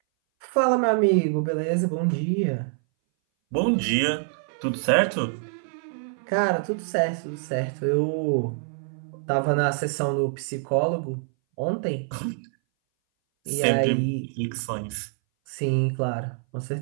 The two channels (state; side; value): silent; left; 59 dB below the other